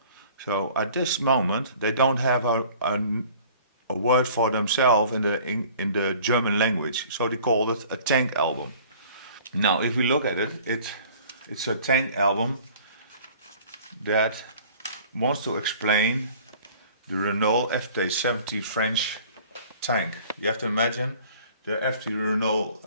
So at this moment, they don't have a word for themselves in the German language. So they called it a tank album. Now, if we look at it, it's a tank album that wants to explain the Renault FT-70 French tank. You have to imagine the FT Renault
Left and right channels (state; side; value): inverted; both; correlation -0.50